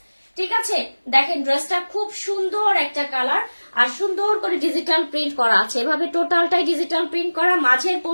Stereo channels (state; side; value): inverted; both; correlation -1.00